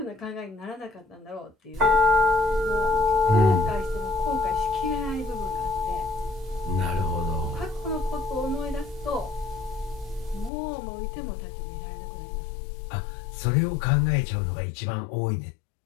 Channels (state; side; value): drops out; right; at 10.5 s